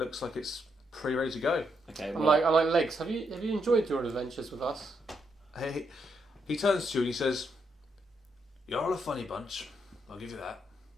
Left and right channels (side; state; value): both; normal; correlation 0.78